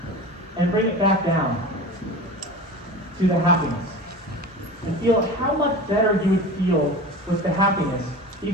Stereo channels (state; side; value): normal; both; correlation 0.33